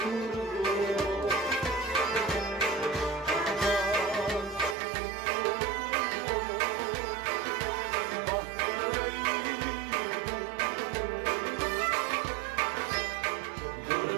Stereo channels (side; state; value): left; drops out; at 4.8 s